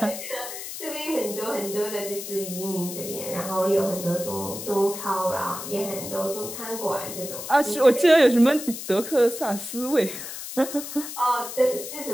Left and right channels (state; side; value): noise; left; hiss, 9 dB below the sound